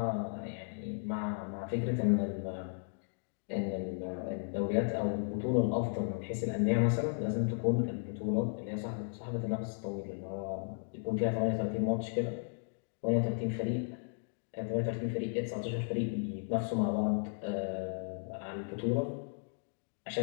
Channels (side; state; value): right; silent; digital silence